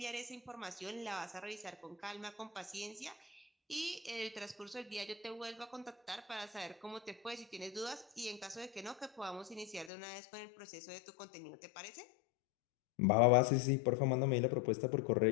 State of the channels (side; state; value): right; drops out; at 9.9 s